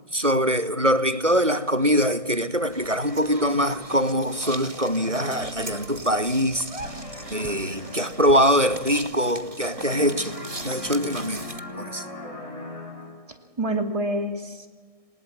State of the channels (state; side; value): late; left; 1.0 ms